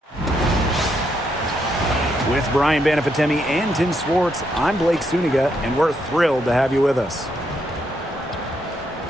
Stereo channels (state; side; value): normal; both; correlation 0.77